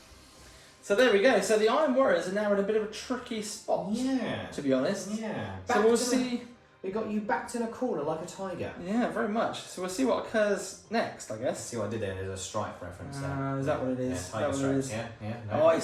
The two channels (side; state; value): both; identical; correlation 1.00